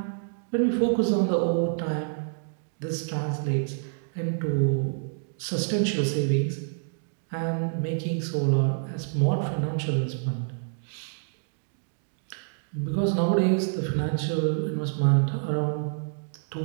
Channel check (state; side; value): silent; left; digital silence